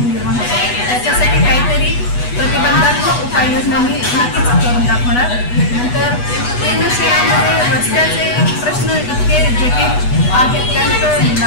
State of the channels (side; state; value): right; late; 8.2 ms